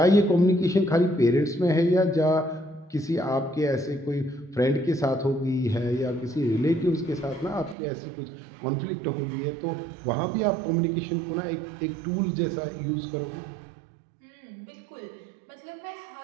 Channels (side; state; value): left; drops out; at 7.8 s